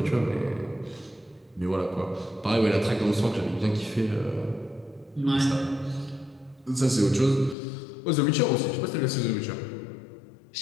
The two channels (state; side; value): drops out; right; at 7.6 s